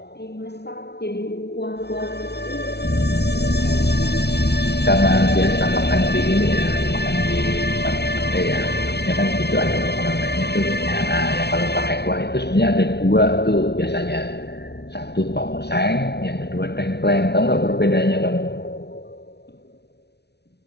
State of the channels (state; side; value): late; right; 0.49 ms